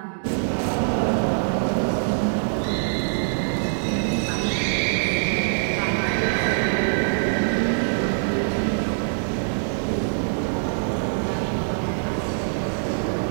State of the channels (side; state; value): left; silent; digital silence